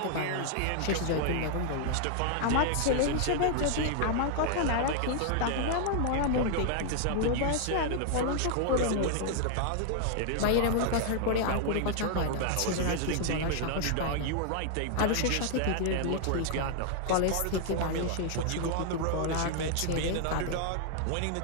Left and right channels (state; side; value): different; both; correlation 0.00